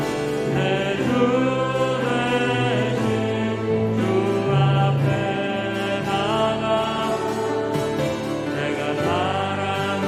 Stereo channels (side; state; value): both; identical; correlation 1.00